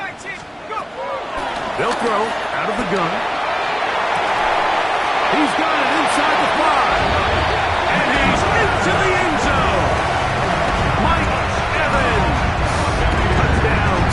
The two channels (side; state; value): both; identical; correlation 1.00